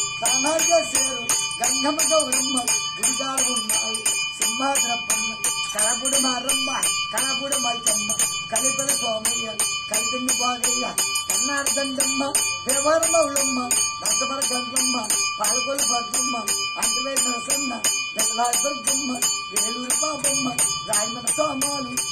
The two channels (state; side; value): identical; both; correlation 1.00